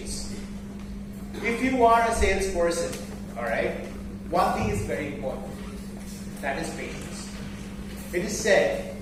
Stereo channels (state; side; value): identical; both; correlation 1.00